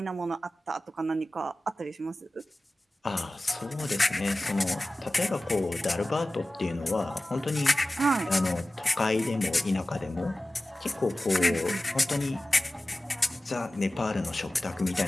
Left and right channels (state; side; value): normal; both; correlation 0.96